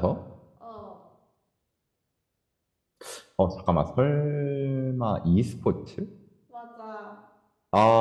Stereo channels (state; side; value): identical; both; correlation 1.00